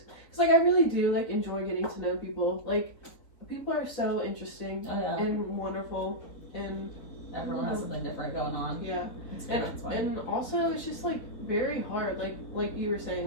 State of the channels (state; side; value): late; right; 3.8 ms